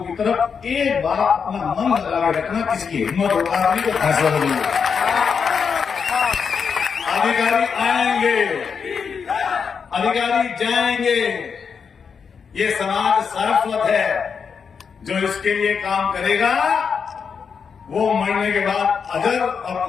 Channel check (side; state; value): right; quieter; 6.2 dB